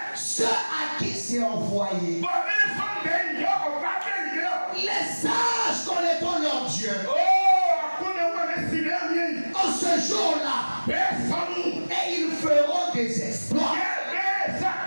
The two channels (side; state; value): both; inverted; correlation -1.00